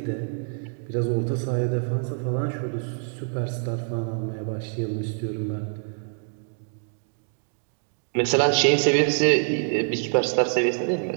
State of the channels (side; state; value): left; silent; 61 dB below the other